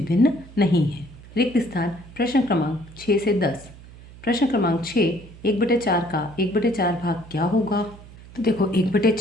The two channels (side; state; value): right; noise; hum, 19 dB below the sound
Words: भिन्न नहीं है। रिक्त स्थान प्रश्न क्रमांक 6 से 10। प्रश्न क्रमांक 6, 1/4 का 1/4 भाग क्या होगा। तो देखो,